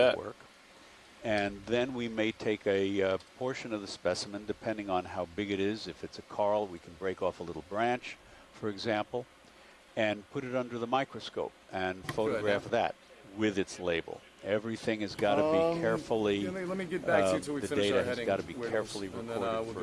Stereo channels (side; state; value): both; identical; correlation 1.00